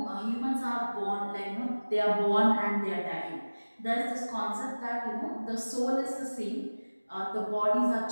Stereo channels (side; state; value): both; inverted; correlation -1.00